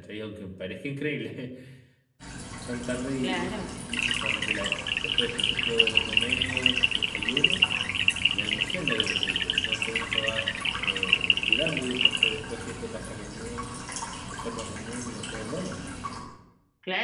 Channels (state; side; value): identical; both; correlation 1.00